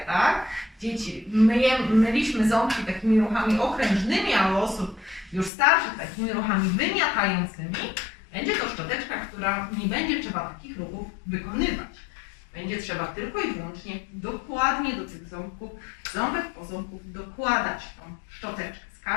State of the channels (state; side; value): drops out; right; at 5.5 s